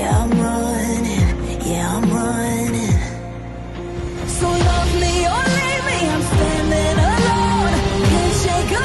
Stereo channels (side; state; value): both; identical; correlation 1.00